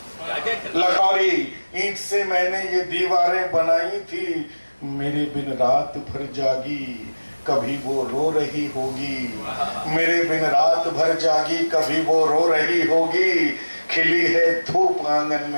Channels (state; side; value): inverted; both; correlation -1.00